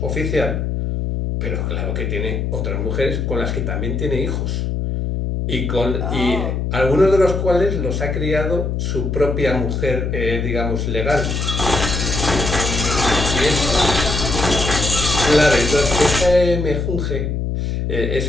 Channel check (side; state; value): left; noise; hum, 1 dB below the sound